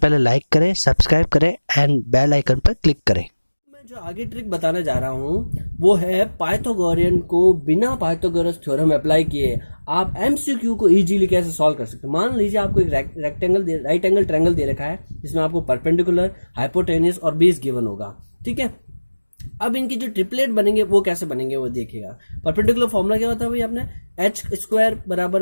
लाइक करें, सब्सक्राइब करें एंड बेल आइकन पर क्लिक करें। मैं जो आगे ट्रिक बताने जा रहा हूँ वो है पाइथागोरियन को बिना पाइथागोरस थ्योरम अप्लाई किए आप एमसीक्यू को इजीली कैसे सॉल्व कर सकते हैं। मान लीजिए आपको एक राइट एंगल ट्रायंगल दे रखा है जिसमें आपको परपेंडिकुलर, हाइपोटेन्यूस और बेस गिवन होगा, ठीक है। अब इनकी जो ट्रिपलेट बनेंगे वो कैसे बनेंगे वो देखिएगा। परपेंडिकुलर फॉर्मूला क्या होता है भाई आपने, एच स्क्वायर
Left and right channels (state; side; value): inverted; both; correlation -1.00